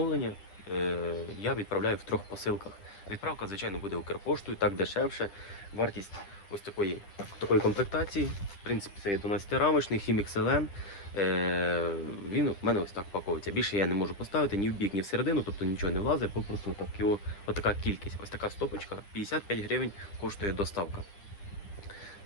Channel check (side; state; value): right; late; 10 ms